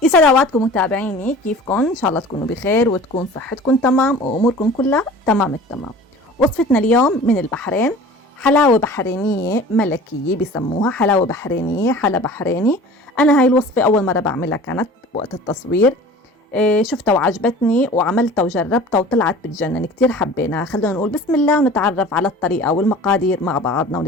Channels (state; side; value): normal; both; correlation 0.42